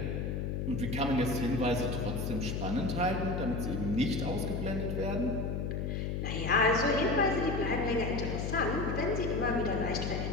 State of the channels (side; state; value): left; noise; hum, 1 dB below the sound